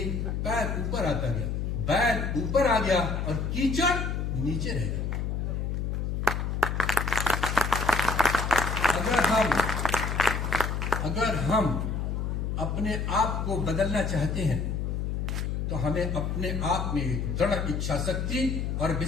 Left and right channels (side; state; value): left; noise; hum, 1 dB below the sound